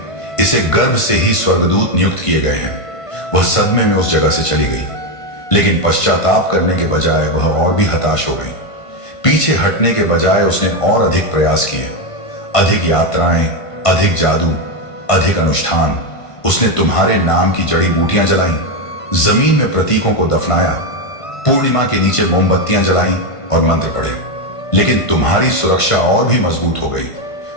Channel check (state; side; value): late; right; 1.5 ms